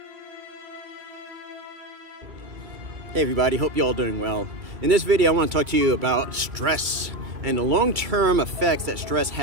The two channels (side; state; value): left; late; 2.5 ms